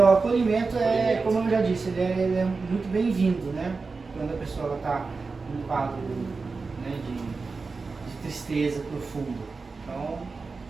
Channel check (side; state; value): left; quieter; 4.3 dB